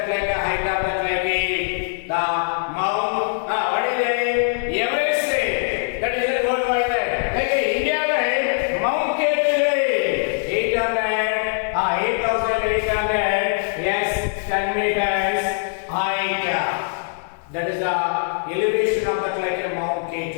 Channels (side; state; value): right; silent; digital silence